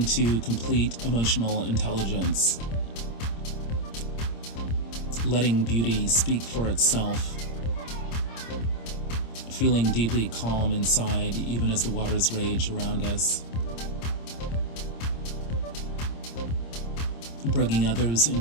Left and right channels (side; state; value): right; late; 26 ms